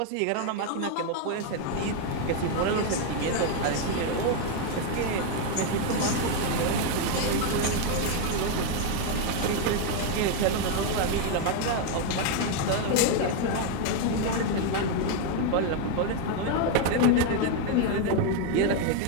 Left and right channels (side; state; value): both; different; correlation 0.01